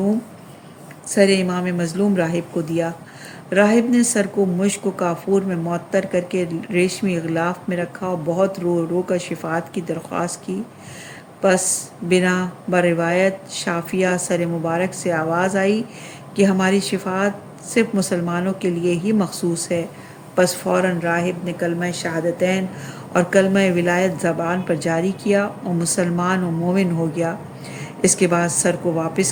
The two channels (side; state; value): both; identical; correlation 1.00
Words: سر امام مظلوم راہب کو دیا۔ راہب نے سر کو مشک و کافور میں معطر کر کے ریشمی غلاف میں رکھا اور بہت رو رو کر شفاعت کی درخواست کی۔ پس بنا بروایت شافیہ سر مبارک سے آواز آئی کہ ہماری شفاعت صرف مسلمانوں کے لیے ہی مخصوص ہے۔ پس فوراً راہب نے کلمہ شہادتین اور کلمہ ولایت زبان پر جاری کیا اور مسلمان و مومن ہو گیا۔ اس کے بعد سر کو واپس